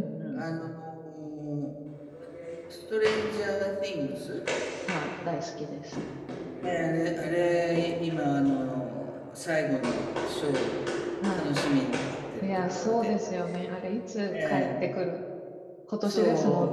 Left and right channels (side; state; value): both; identical; correlation 1.00